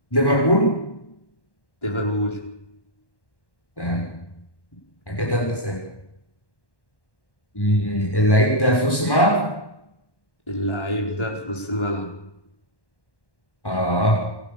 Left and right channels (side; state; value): right; late; 1.1 ms